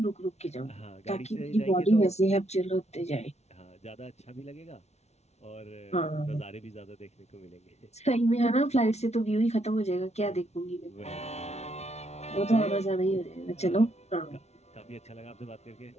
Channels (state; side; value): late; right; 0.31 ms